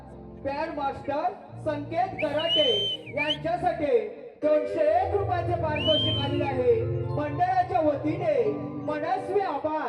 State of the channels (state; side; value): identical; both; correlation 1.00